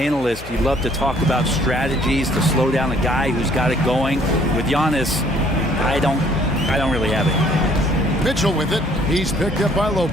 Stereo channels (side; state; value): left; noise; hum, 15 dB below the sound